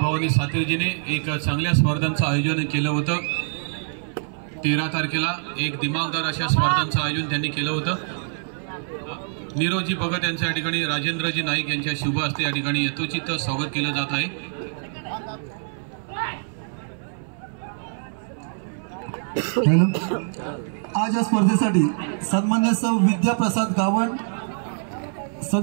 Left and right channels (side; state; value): left; silent; 62 dB below the other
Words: भवानी सातीरजीने एक चांगल्या स्पर्धांचं आयोजन केलं होतं. 13 तारखेला एक दिमागदार अशा स्पर्धांचं आयोजन त्यांनी केलं होतं. नीरजजी भगत यांच्या या ठिकाणी राजेंद्रजी नाईक यांच्या शुभ हस्ते या ठिकाणी यथोचित स्वागत केलं जात आहे. आज या स्पर्धेसाठी सन्मान्य सौ विद्याप्रसाद गावण